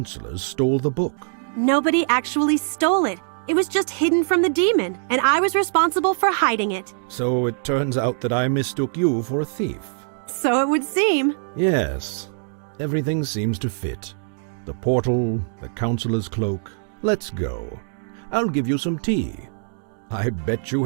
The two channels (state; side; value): silent; left; digital silence